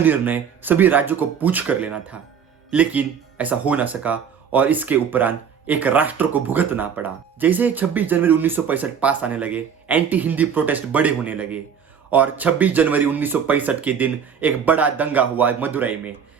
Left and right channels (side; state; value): left; quieter; 7.3 dB